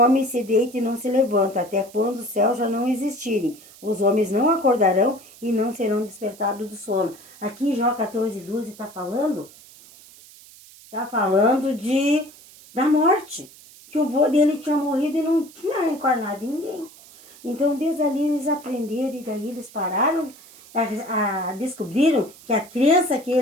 se deita e não se levanta, até quando os céus já não existirem. Os homens não acordarão e não serão despertados do sono. Aqui em Jó 14:12 está falando da morte. Que o vô dele tinha morrido e não tinha reencarnado em ninguém. Então, desde ali eles aprenderam e daí eles pararam, descobriram que a crença que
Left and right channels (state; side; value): noise; right; hiss, 22 dB below the sound